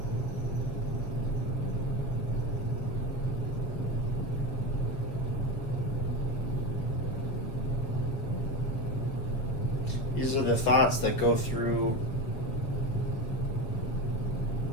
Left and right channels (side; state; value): right; late; 6.8 ms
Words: These are the thoughts that go through